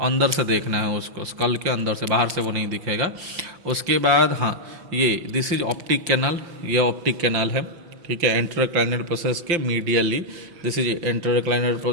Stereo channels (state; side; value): late; left; 5.7 ms